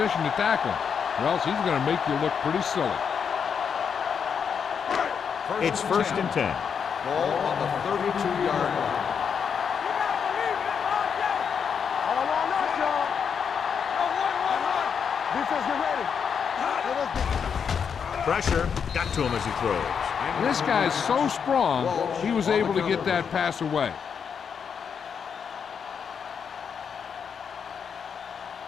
to tackle him, or else he's going to make you look pretty silly. It's 1st and 10. Ball on the 32-yard line. All on us, y'all. Run. Defense, get ready. Let us get Pressure got to him as he throws. This guy's so strong, he was able to get that pass away.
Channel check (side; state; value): right; quieter; 6.9 dB